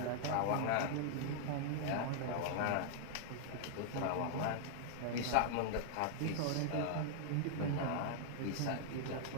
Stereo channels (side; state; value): both; different; correlation -0.01